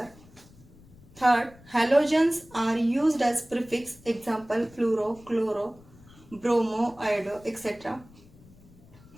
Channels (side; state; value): left; noise; rumble, 24 dB below the sound